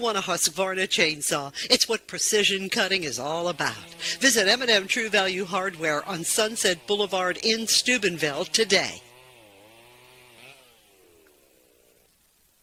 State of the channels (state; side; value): identical; both; correlation 1.00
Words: a Husqvarna chainsaw. It's what precision cutting is all about. Visit M&M True Value Hardware on Sunset Boulevard in Steubenville today.